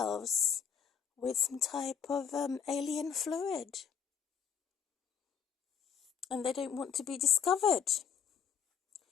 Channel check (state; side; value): quieter; right; 7.3 dB